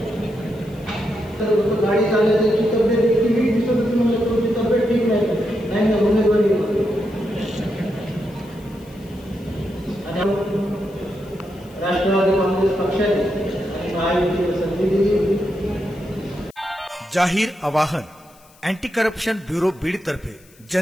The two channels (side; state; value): left; noise; hiss, 28 dB below the sound